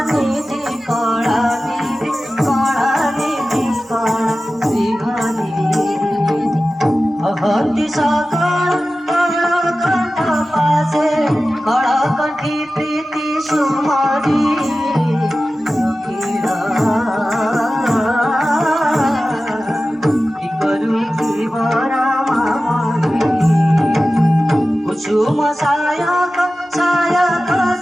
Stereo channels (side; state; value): both; normal; correlation 0.95